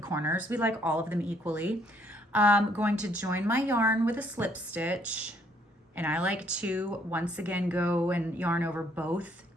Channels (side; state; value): both; normal; correlation 0.66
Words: corners. We like all of them equally. I'm going to join my yarn with a slip stitch. And I like to, once again, go and yarn over both